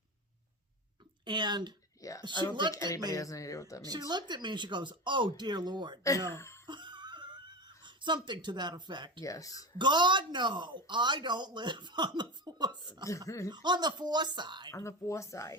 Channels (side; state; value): both; normal; correlation 0.24